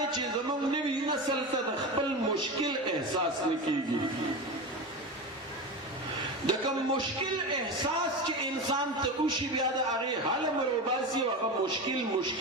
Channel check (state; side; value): normal; both; correlation 0.23